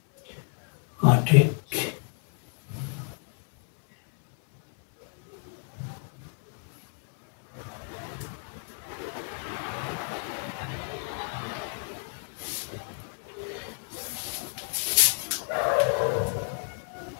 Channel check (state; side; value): silent; right; 57 dB below the other